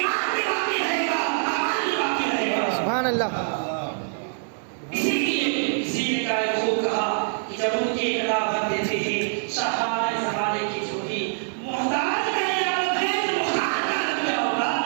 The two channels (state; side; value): silent; left; 55 dB below the other